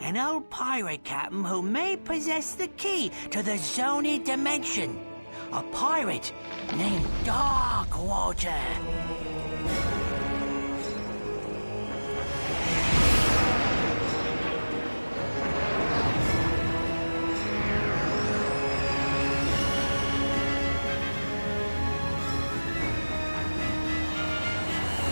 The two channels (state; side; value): inverted; both; correlation -1.00